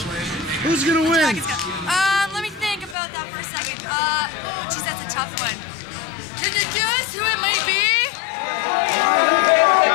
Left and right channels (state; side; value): drops out; right; at 3.0 s